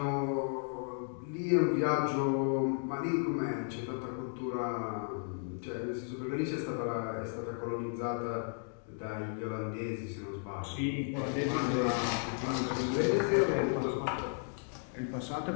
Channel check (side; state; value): right; silent; 55 dB below the other